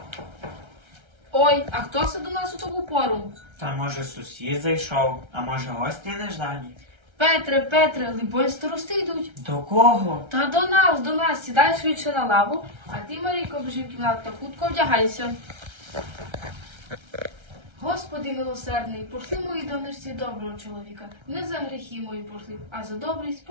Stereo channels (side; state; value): left; late; 1.3 ms